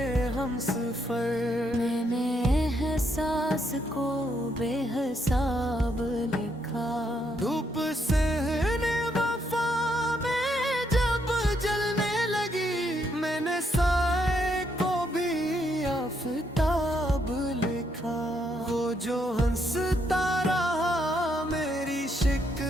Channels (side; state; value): both; normal; correlation 0.75